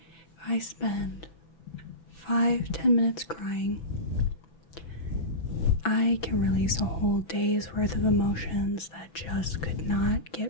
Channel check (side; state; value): right; late; 6.0 ms